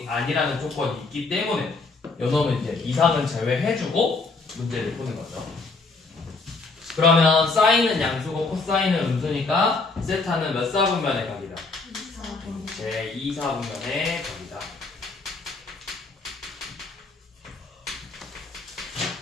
아니라는 조건이 있기 때문에 요놈은 이제 이상은 제외해주고 문제를 푸는 거죠. 그러면 사인은 양수고 코사인은 음수니까 세타는 몇 사분면의 각이다? 제 2사분면의 각이다.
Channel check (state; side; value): quieter; right; 3.8 dB